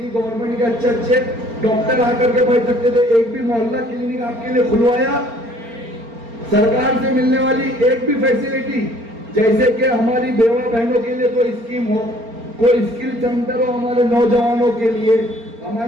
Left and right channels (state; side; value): late; left; 4.3 ms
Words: गवर्नमेंट के अच्छे डॉक्टर आकर के बैठ सकते थे, एक भी मोहल्ला क्लिनिक आपके लिए खुलवाया। सरकार से मिलने वाली एक भी फैसिलिटी, जैसे कि हमारी बेवा बहनों के लिए कोई स्कीम हो, कोई स्किल सेंटर हो, हमारे नौजवानों के लिए,